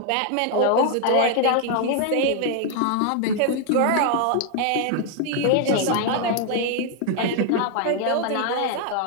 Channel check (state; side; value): different; both; correlation 0.00